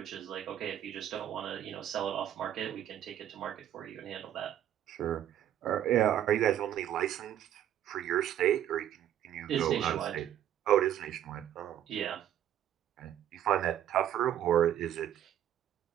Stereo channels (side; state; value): left; quieter; 10.9 dB